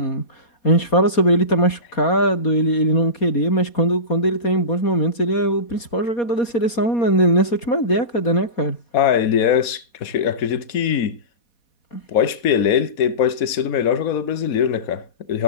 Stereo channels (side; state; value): right; late; 4.2 ms